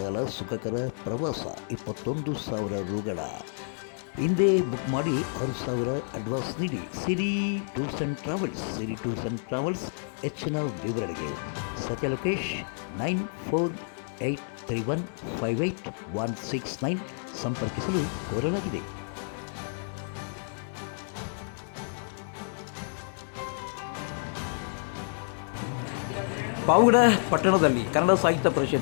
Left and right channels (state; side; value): silent; right; 58 dB below the other